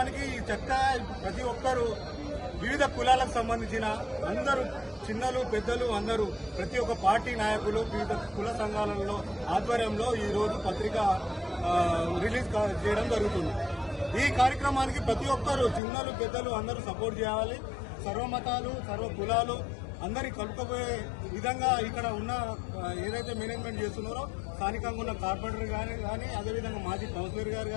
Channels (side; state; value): right; drops out; at 15.8 s